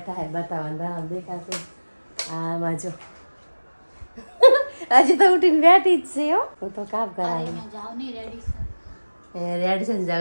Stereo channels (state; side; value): inverted; both; correlation -1.00